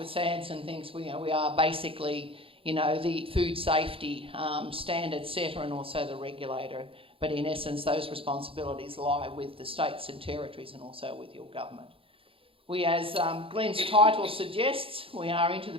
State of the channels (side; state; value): left; late; 0.27 ms